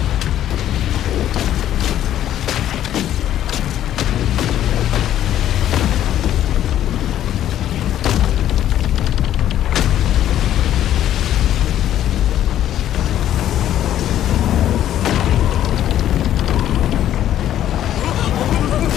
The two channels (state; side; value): quieter; right; 11.7 dB